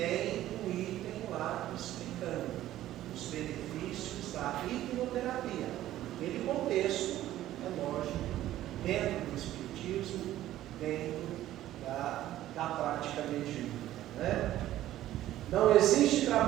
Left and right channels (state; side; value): quieter; left; 13.8 dB